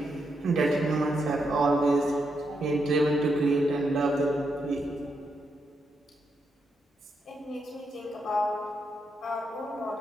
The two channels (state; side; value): normal; both; correlation 0.82